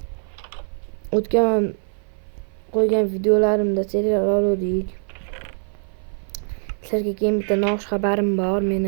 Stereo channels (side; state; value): left; silent; 56 dB below the other